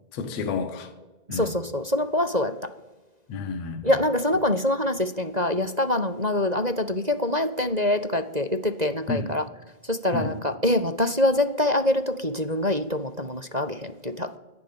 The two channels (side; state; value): left; late; 2.0 ms